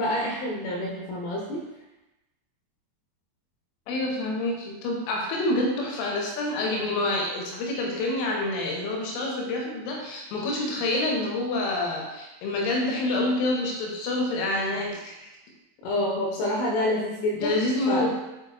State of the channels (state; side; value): late; right; 23 ms